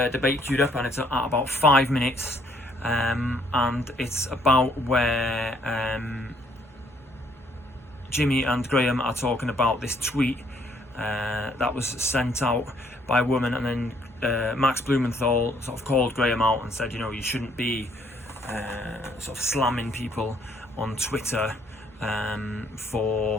debate queued up, and it's at about 5 minutes, and it's about where Jimmy and Graham are talking about this tweet that was sent out by a woman, and then Max Blumenthal sort of called Graham out and said, you shouldn't be sort of slamming people on Twitter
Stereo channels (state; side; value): normal; both; correlation 0.66